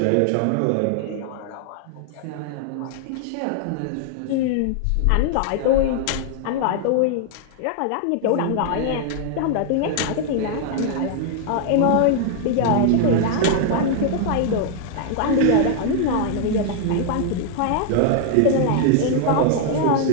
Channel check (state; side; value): different; both; correlation 0.00